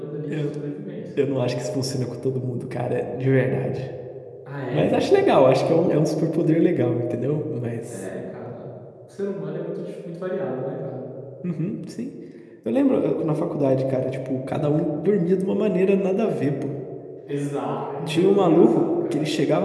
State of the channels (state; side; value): identical; both; correlation 1.00